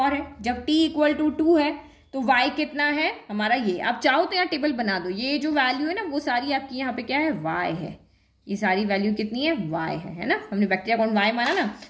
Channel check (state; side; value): identical; both; correlation 1.00